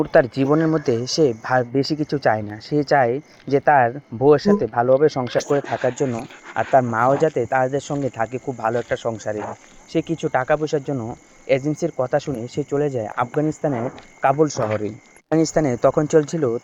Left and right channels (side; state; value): both; identical; correlation 1.00